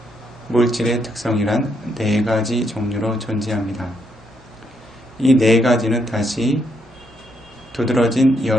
물질의 특성이란 4가지 종류로 존재합니다. 이 4가지는 다시 두드러진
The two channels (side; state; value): both; normal; correlation 0.76